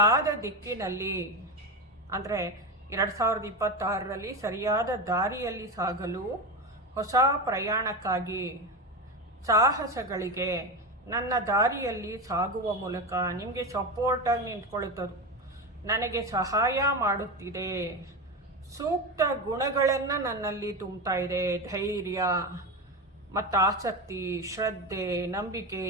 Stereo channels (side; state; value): both; normal; correlation 0.19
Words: ದಿಕ್ಕಿನಲ್ಲಿ, ಅಂದರೆ 2026ರಲ್ಲಿ ಸರಿಯಾದ ದಾರಿಯಲ್ಲಿ ಸಾಗಲು ಹೊಸ ಪ್ರಯಾಣಕ್ಕಾಗಿ, ಸಾಹಸಗಳಿಗೆ, ನನ್ನ ದಾರಿಯಲ್ಲಿ ಸಾಗುವ ಮೂಲಕ ನಿಮಗೆ ಸಪೋರ್ಟಾಗಿ ನಿಂತ್ಕೊಳ್ಳುತ್ತದು. ನನಗೆ ಸಹಾಯ ಮಾಡುತ್ತಿದೆ. ಸೂಕ್ತ ಗುಣಗಳನ್ನು ನನ್ನಲ್ಲಿ ತುಂಬ್ತಾ ಇದೆ. ಧೈರ್ಯ ಮತ್ತು ಆಸಕ್ತಿ, ಶ್ರದ್ಧೆ, ನಂಬಿಕೆ